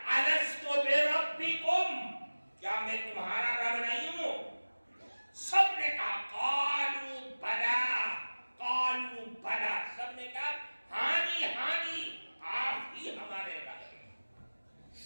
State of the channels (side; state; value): both; inverted; correlation -1.00